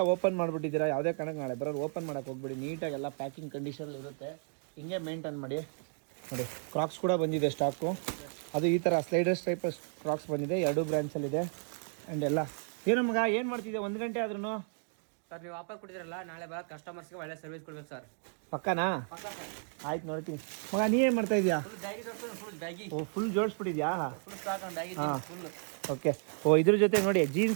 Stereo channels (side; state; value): left; silent; 56 dB below the other